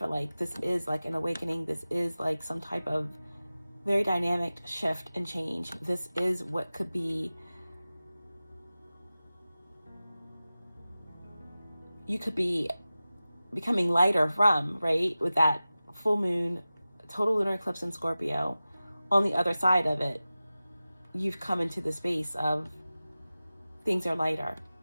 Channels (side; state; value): both; inverted; correlation -0.96